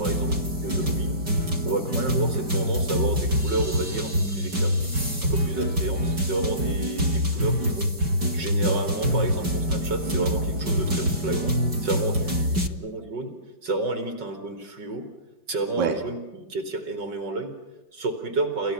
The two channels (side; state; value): left; late; 5.1 ms